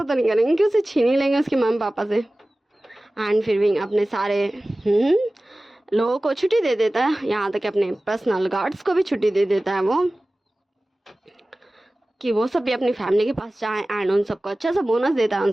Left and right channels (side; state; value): both; normal; correlation 0.97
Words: तो नहीं करेंगे कि उसे छीन ही लेंगे उसके मम्मी पापा से। एंड फिर विंग अपने सारे लोगों को छुट्टी दे देता है, यहाँ तक अपने पर्सनल गार्ड्स को भी छुट्टी दे देता है वो, कि वो सब भी अपनी फैमिली के पास जाएं। एंड उन सबको अच्छा सा बोनस देता है, उन